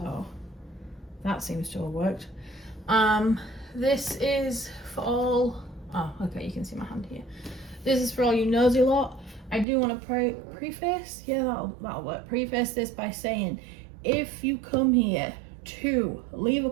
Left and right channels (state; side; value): drops out; left; at 9.7 s